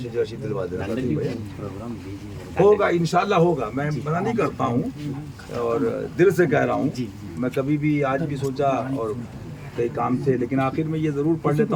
رشید دلوا دینا، ہوگا انشاءاللہ ہوگا، میں منع نہیں کرتا ہوں اور دل سے کہہ رہا ہوں۔ میں کبھی بھی آج بھی سوچا اور کئی کام تھے، لیکن آخر میں یہ ضرور پڑھ لیتا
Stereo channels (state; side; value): identical; both; correlation 1.00